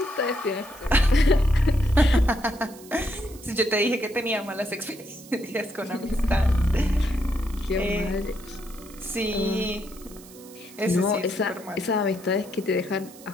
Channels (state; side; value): noise; right; hiss, 20 dB below the sound